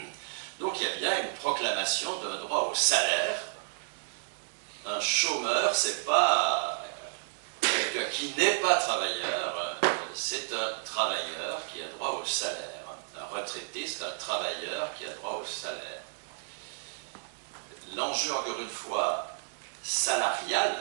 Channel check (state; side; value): silent; left; digital silence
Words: Donc il y a bien une proclamation d'un droit au salaire. Un chômeur, c'est pas quelqu'un qui n'est pas travailleur, c'est un travailleur qui a droit au salaire. Un retraité, c'est un travailleur qui a droit au salaire. L'enjeu, encore une fois,